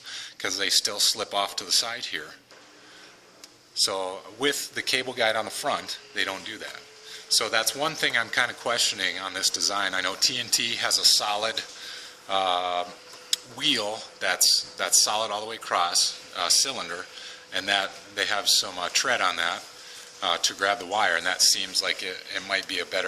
because they still slip off to the side here. So with the cable guide on the front, they don't do that. So that's one thing I'm kind of questioning on this design. I know TNT has a solid wheel that's solid all the way across, cylinder, and that they have some tread on that to grab the wire, and that seems like it might be a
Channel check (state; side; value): identical; both; correlation 1.00